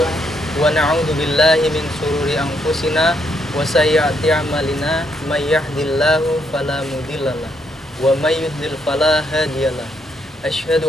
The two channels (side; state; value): both; normal; correlation 0.75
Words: wa na'udzu billahi min shururi anfusina wa sayyiati a'malina may yahdihillahu fala mudhillalah wa may yudlil fala hadiyalah.